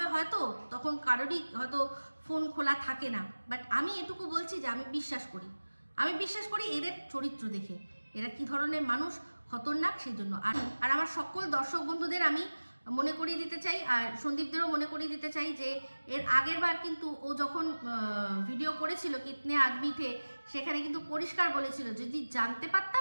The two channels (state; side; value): inverted; both; correlation -1.00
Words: হয়তো তখন কারোরই হয়তো ফোন খোলা থাকে না, বাট আমি এটুকু বলছি যে আমি বিশ্বাস করি এদের চরিত্র দেখে, এরা কি ধরনের মানুষ, খতরনাক, সেই জন্য। আর আমার সকল দর্শক বন্ধুদের আমি মনে করিয়ে দিতে চাই, আর সন্দীপদেরও মনে করিয়ে দিতে চাই যে এর আগের বার কিন্তু ও যখন ভিডিও করেছিল কিতনে আদমি থে, সেখানে কিন্তু পরিষ্কার বলেছিল যদি জানতে